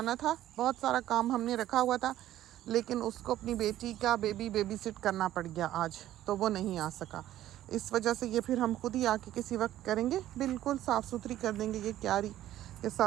था, बहुत सारा काम हमने रखा हुआ था, लेकिन उसको अपनी बेटी का बेबी सिट करना पड़ गया आज, तो वो नहीं आ सका। इस वजह से ये फिर हम खुद ही आके किसी वक्त करेंगे, बिल्कुल साफ़ सुथरी कर देंगे ये क्यारी। ये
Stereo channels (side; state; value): left; quieter; 13.3 dB